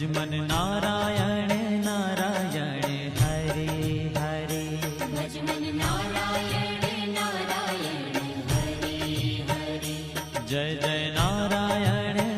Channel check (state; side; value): identical; both; correlation 1.00